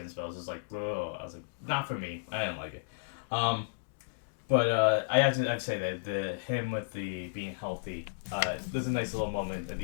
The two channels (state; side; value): quieter; right; 34.7 dB